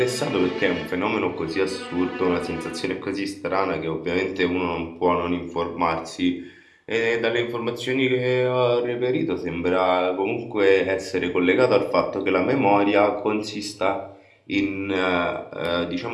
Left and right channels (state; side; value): identical; both; correlation 1.00